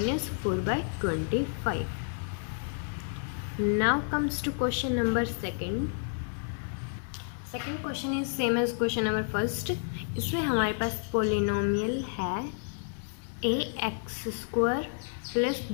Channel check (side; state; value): right; silent; 57 dB below the other